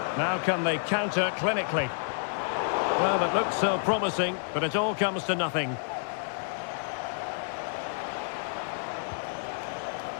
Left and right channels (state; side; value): silent; right; digital silence